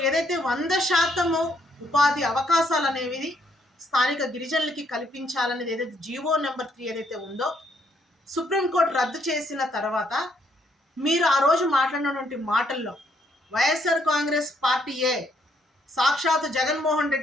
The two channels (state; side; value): normal; both; correlation 0.70